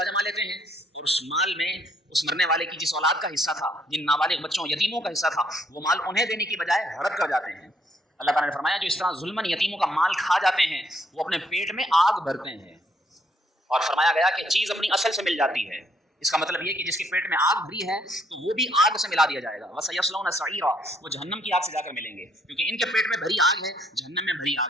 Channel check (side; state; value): both; normal; correlation 0.69